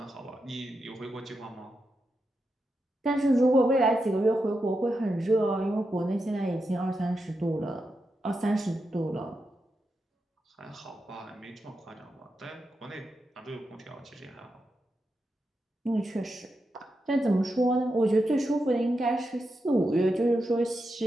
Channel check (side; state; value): both; normal; correlation 0.87